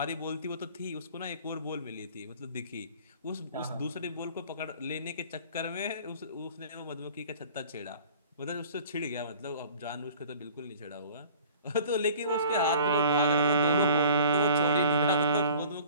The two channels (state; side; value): inverted; both; correlation -0.48